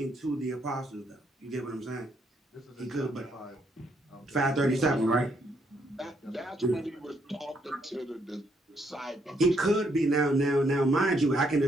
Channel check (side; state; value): both; normal; correlation 0.73